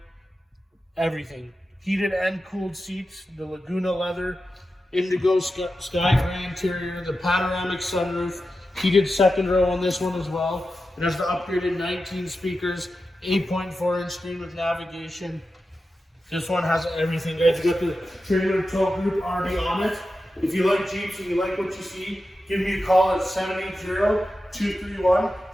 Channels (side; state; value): both; normal; correlation 0.91